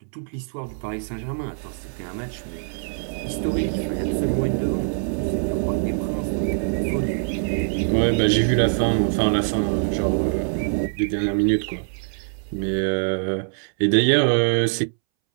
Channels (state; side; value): silent; left; 63 dB below the other